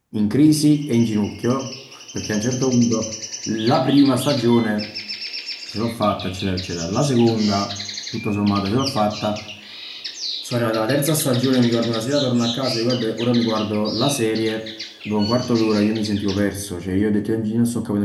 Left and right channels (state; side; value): identical; both; correlation 1.00